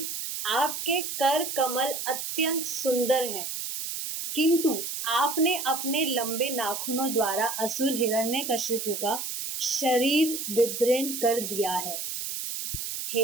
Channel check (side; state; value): right; noise; hiss, 5 dB below the sound